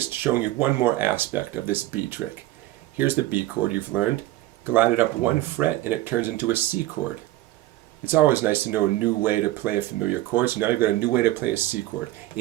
showing you one more aspect of this B trick. Here's the B chord you've learned. Glide it up 1 fret and it turns into a C chord. It's always nice to know a new way to play a familiar chord, so now you've got a new way to play a C chord.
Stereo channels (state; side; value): quieter; left; 16.4 dB